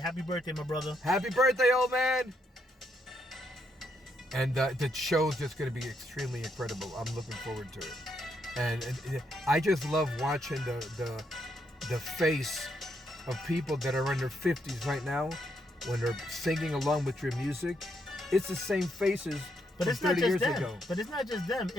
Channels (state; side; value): normal; both; correlation 0.76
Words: birthday, my brother. Happy birthday, old man. And the show's just going to be extremely incredible. I'm looking forward to it. And I just love watching the face of people that are in their 50s right now when they're singing along with your music. It's the same faces but from it's not 30 just years them. ago. But it's not just them.